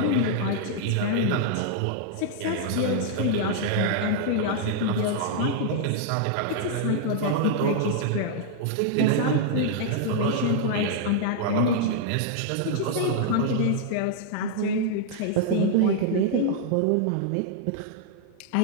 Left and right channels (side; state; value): both; different; correlation -0.01